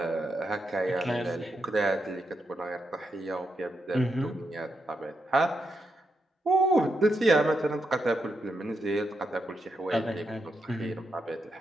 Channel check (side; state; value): both; normal; correlation 0.83